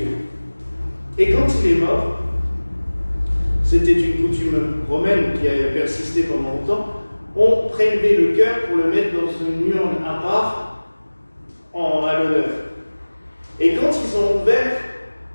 Et quand il est mort, c'était une coutume romaine qui a persisté pendant longtemps, on prélevait le cœur pour le mettre dans une urne à part à l'honneur. Et quand ils ont ouvert,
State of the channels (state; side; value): inverted; both; correlation -1.00